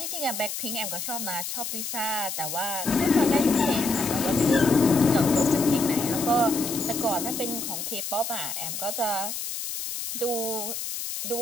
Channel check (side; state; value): left; noise; hiss, 5 dB below the sound